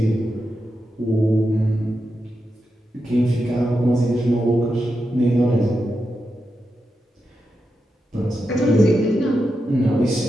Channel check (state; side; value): normal; both; correlation 0.88